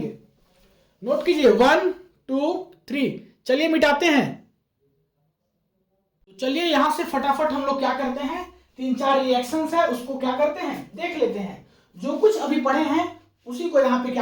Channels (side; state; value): both; identical; correlation 1.00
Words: नोट कीजिए 1 2 3। चलिए मिटाते हैं। तो चलिए यहां से फटाफट हम लोग क्या करते हैं, 3-4 रिएक्शंस है उसको क्या करते हैं, देख लेते हैं। जो कुछ अभी पढ़े हैं उसी को यहाँ पे